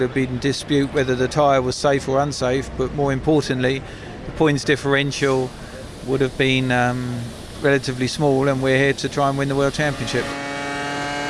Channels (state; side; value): identical; both; correlation 1.00